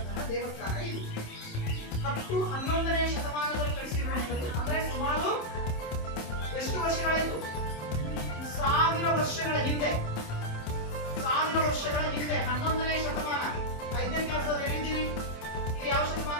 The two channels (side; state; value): right; late; 27 ms